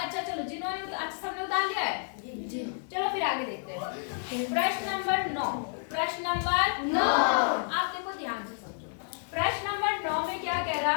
चलो, जिन्होंने अच्छा सबने उतार लिया है जी, चलो फिर आगे देखते हैं। प्रश्न नंबर 9। प्रश्न नंबर 9 आप देखो ध्यान से समझो। प्रश्न नंबर 9 में क्या कह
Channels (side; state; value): right; silent; digital silence